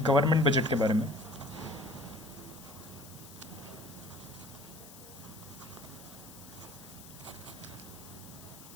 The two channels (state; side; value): noise; left; hiss, 17 dB below the sound